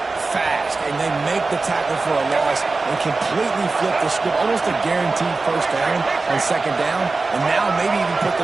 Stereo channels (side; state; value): left; quieter; 3.8 dB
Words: fast, and they make the tackle for a loss and completely flip the script. Almost a guaranteed 1st down on 2nd down, and now maybe even put